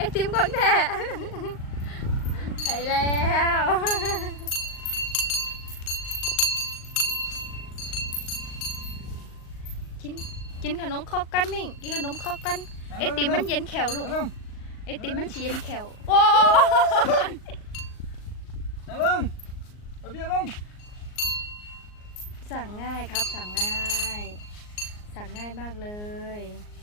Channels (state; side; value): late; right; 38 ms